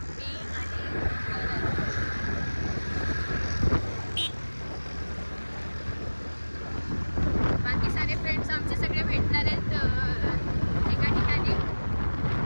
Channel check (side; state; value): both; inverted; correlation -1.00